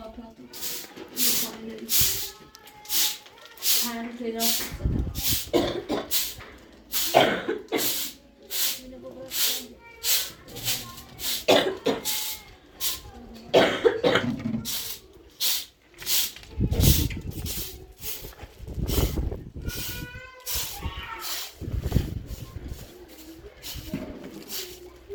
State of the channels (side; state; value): both; identical; correlation 1.00